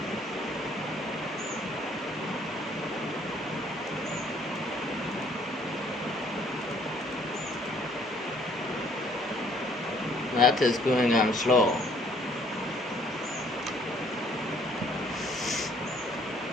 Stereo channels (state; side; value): normal; both; correlation 0.62